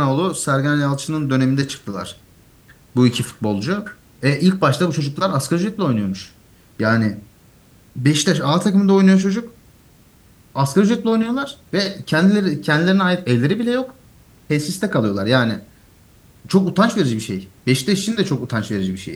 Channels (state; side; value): identical; both; correlation 1.00